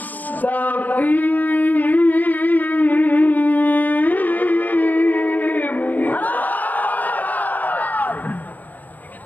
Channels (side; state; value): right; late; 0.083 ms